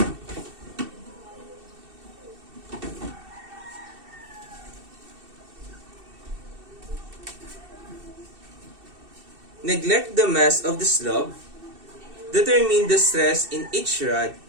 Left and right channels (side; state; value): left; late; 2.7 ms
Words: Neglect the mass of the slab. Determine the stress in each rod